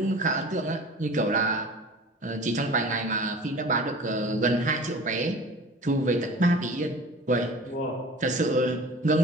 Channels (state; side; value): normal; both; correlation 0.40